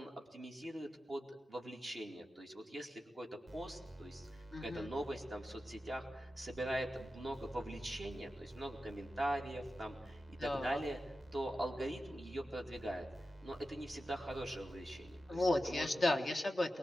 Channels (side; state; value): both; normal; correlation 0.92